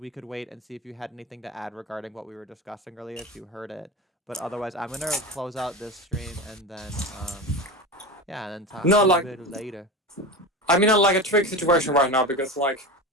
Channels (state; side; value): normal; both; correlation 0.26